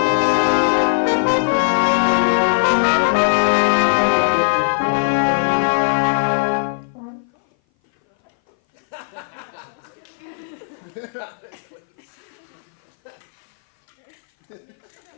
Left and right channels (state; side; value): silent; right; 59 dB below the other